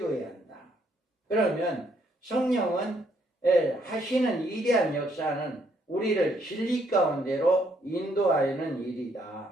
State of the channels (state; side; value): normal; both; correlation 0.70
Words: 한다. 그러면 성령은 하시는 위대한 역사는 우리를 진리 가운데로 인도하는